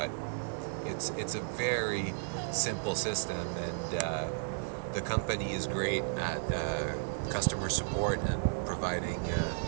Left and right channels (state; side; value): silent; left; digital silence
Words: it's a very simple system, and the company is great at customer support and providing